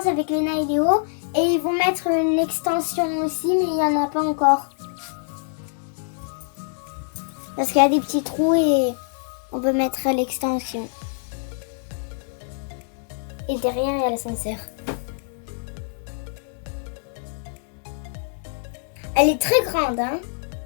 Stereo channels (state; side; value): silent; right; digital silence